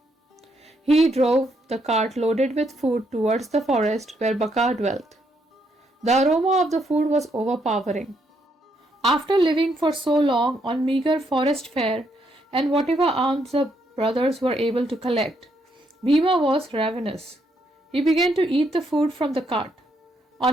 He drove the cart loaded with food towards the forest where Baka dwelt. The aroma of the food was overpowering. After living for so long on meager forest fare and whatever alms the brothers were able to collect, Bhima was ravenous. He began to eat the food from the cart.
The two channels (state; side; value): normal; both; correlation 0.75